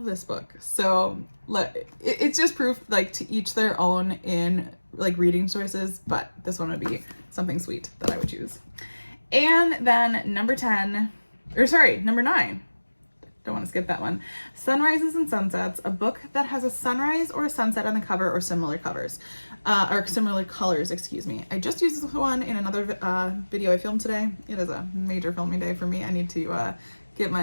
this book. So it's just proof, like, to each their own in like reading choices, but this one would be something sweet that I would choose. And then number 9. Don't want to skip that one. Sunrises and Sunsets, a book that has a sunrise or a sunset on the cover or similar covers, or similar colors, excuse me. I just used this one in another video I filmed today. It is a major filming day for me. I need to get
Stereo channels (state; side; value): inverted; both; correlation -1.00